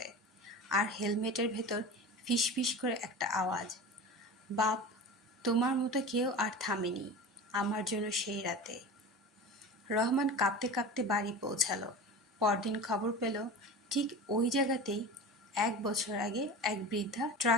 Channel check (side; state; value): both; normal; correlation 0.32